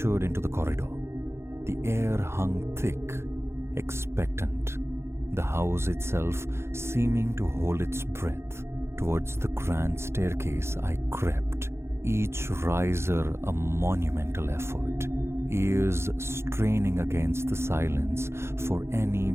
into the corridor. The air hung thick, expectant, the house itself seeming to hold its breath. Towards the grand staircase I crept, each riser a monumental effort, ears straining against the silence for any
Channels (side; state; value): left; late; 0.12 ms